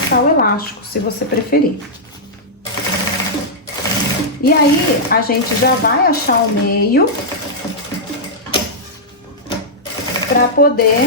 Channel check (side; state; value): both; normal; correlation -0.09